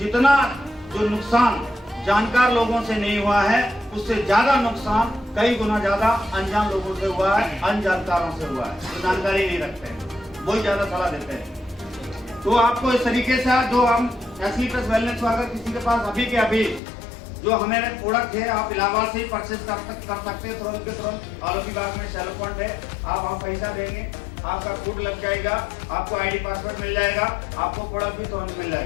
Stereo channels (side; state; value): right; drops out; at 16.8 s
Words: जो नुकसान जानकार लोगों से नहीं हुआ है, उससे ज्यादा नुकसान कई गुना ज्यादा अनजान लोगों से हुआ है, अनजानकारों से हुआ है, जो जानकारी नहीं रखते हैं, वही ज्यादा सलाह देते हैं। तो आपको इस तरीके से जो हम एसली प्लस वेलनेस को अगर किसी के पास अभी के अभी जो हमें प्रोडक्ट है, आप इलाहाबाद से ही परचेज कर सकते हैं तुरंत के तुरंत। आलोकी बाग में शेल पॉइंट है, आप वहाँ पैसा देंगे, आपका फूड लग जाएगा, आपको आईडी पासवर्ड मिल जाएगा, आपको प्रोडक्ट भी तुरंत मिल